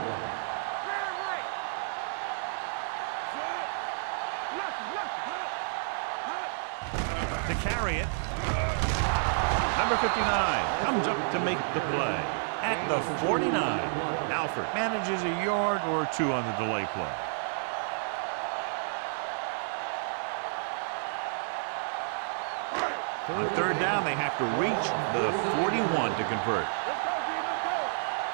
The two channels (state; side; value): silent; left; digital silence